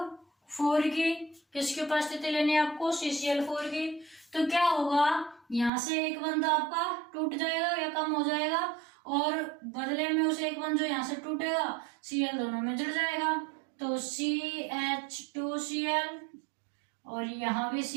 की। किसकी उपस्थिति लेनी है आपको? CCl4 की। तो क्या होगा, यहां से एक बंद आपका टूट जाएगा या कम हो जाएगा, और बदले में उसे एक बंद जो यहां से टूटेगा Cl दोनों में जुड़ जाएगा। तो CH2Cl और यहां भी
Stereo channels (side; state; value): left; drops out; at 5.7 s